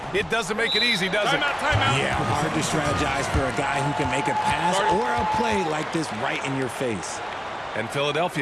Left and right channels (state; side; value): identical; both; correlation 1.00